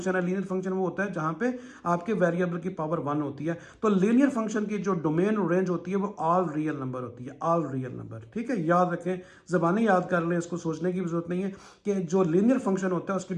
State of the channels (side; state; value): both; identical; correlation 1.00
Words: है, लीनियर फंक्शन वो होता है जहां पे आपके वेरिएबल की पावर 1 होती है, तो लीनियर फंक्शन की जो डोमेन और रेंज होती है वो ऑल रियल नंबर होती है, ऑल रियल नंबर। ठीक है, याद रखें, जबानी याद कर लें, इसको सोचने की भी जरूरत नहीं है कि जो लीनियर फंक्शन होता है उसकी